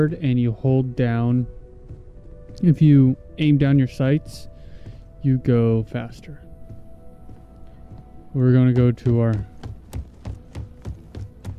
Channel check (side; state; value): both; identical; correlation 1.00